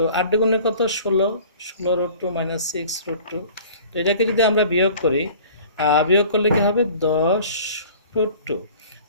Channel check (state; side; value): inverted; both; correlation -0.46